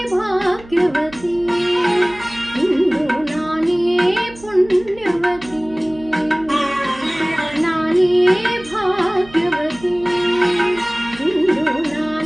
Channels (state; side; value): noise; right; hum, 21 dB below the sound